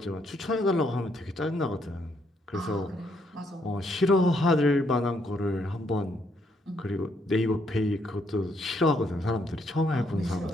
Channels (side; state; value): both; normal; correlation 0.73